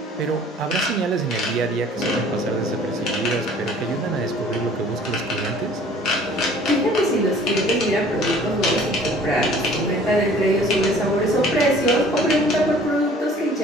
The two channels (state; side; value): normal; both; correlation 0.51